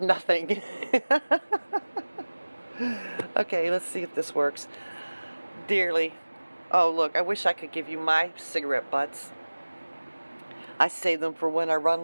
Okay, let's see if this works. Dearly. Oh, look, I wish I could give you my cigarette butts. I save them for when I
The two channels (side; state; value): both; inverted; correlation -1.00